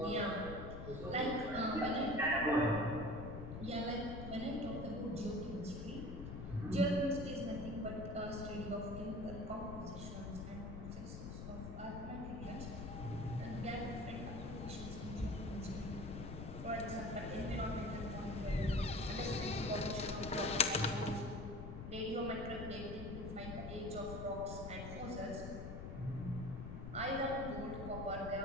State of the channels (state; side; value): noise; left; rumble, 7 dB below the sound